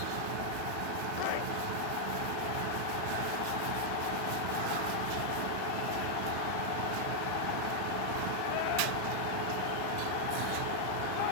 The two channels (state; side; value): different; both; correlation 0.00